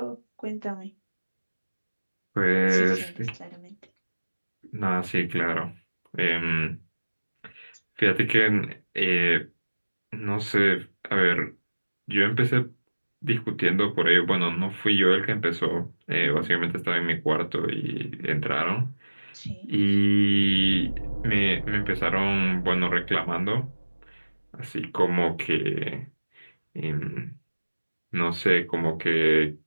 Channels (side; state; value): both; inverted; correlation -1.00